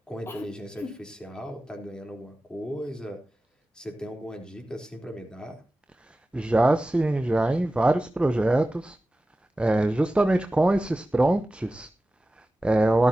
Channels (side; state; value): both; normal; correlation 0.96